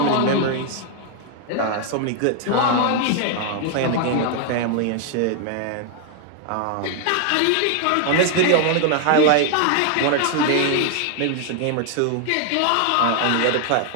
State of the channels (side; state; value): both; different; correlation 0.00